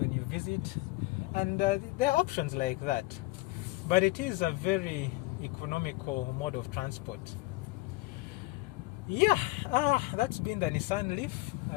you visit. And there are options like that. But it is a very economical mode of transport. Yeah, that's been the Nissan Leaf,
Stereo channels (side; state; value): right; quieter; 21.0 dB